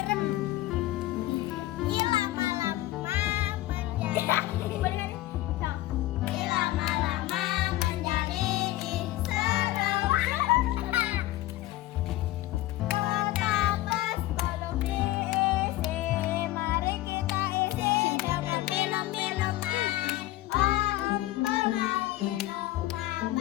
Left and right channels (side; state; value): right; quieter; 16.3 dB